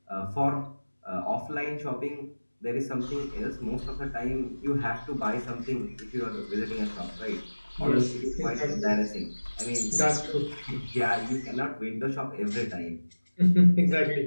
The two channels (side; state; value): both; inverted; correlation -1.00